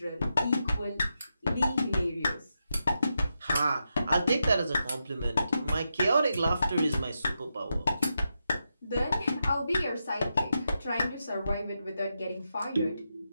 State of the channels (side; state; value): both; inverted; correlation -0.86